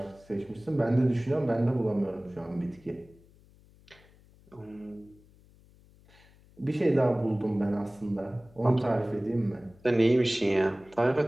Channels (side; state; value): left; noise; hum, 27 dB below the sound